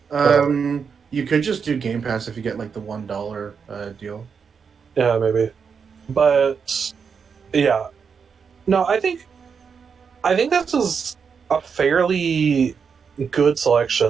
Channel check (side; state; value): left; quieter; 6.2 dB